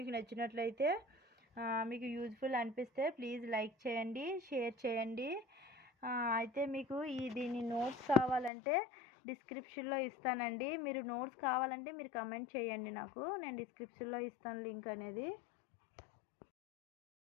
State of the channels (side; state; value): right; drops out; at 8.5 s